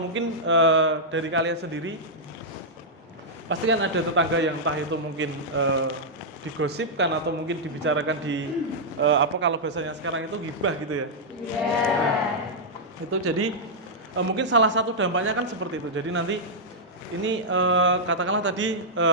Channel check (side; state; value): both; normal; correlation -0.08